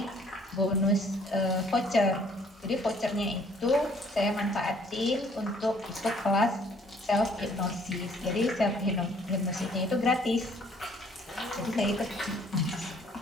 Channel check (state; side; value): normal; both; correlation 0.60